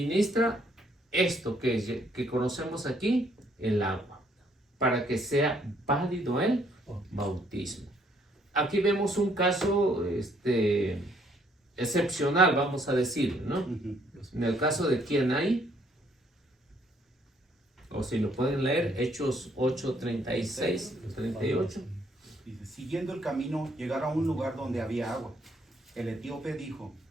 esto que conocemos aquí, el agua, para que sea válido el bautismo. Aquí vemos un caso excepcional, vamos a decir, ¿no? En el caso de quién hay, O si lo pueden leer, Hechos 8:36, 38. Dice, siguiendo el camino, llegaron a un lugar donde había agua. El etíope dijo,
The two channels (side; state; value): both; normal; correlation 0.67